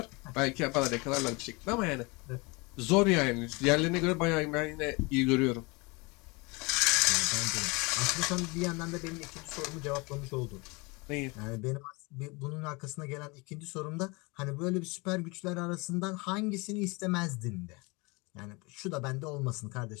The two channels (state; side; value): quieter; right; 26.8 dB